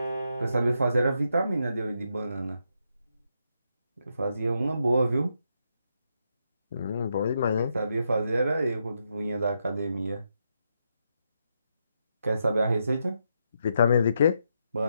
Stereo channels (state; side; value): inverted; both; correlation -0.81